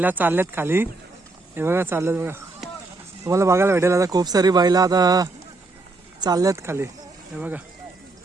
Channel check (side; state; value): left; quieter; 3.3 dB